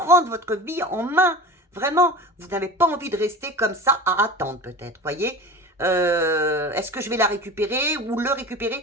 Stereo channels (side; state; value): both; normal; correlation 0.34